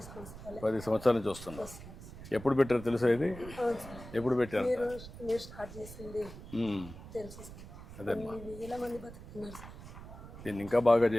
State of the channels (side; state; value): right; noise; rumble, 14 dB below the sound